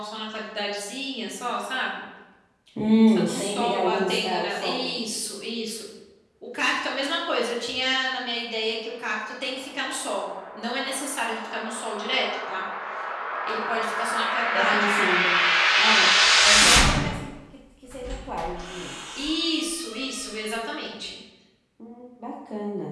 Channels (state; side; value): identical; both; correlation 1.00